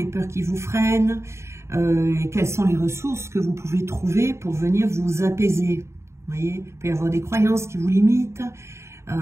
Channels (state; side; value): late; left; 0.13 ms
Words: peurs qui vous freinent? Quelles sont les ressources que vous pouvez trouver pour venir vous apaiser? Vous voyez, il peut y avoir des croyances qui vous limitent.